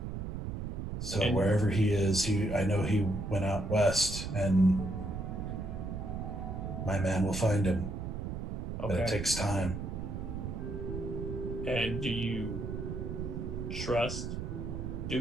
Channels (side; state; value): right; noise; rumble, 5 dB below the sound